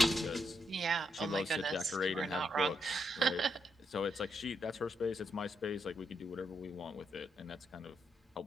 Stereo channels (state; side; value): normal; both; correlation 0.80